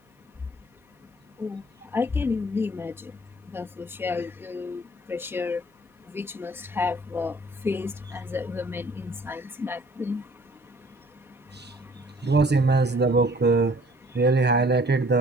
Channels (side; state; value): both; normal; correlation 0.56